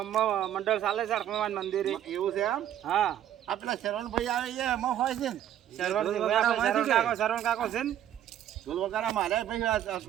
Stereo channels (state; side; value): quieter; left; 11.1 dB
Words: મંડળ ચાલે છે હનુમાન મંદિરે. એવું છે એમ? હા આપણા શરવણભાઈ આવે છે એમાં હોય છે ને? શરવણ કાકો છે ને ઢોલ વગાડા મારે ભાઈ